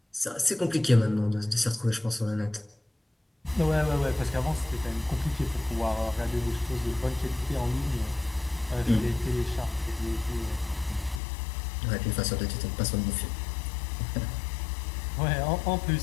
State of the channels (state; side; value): drops out; right; at 11.2 s